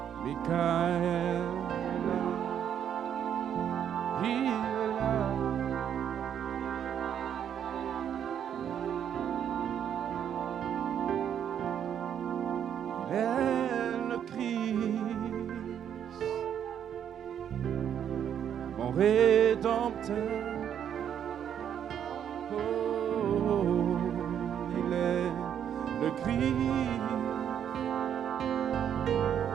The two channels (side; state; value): left; quieter; 9.2 dB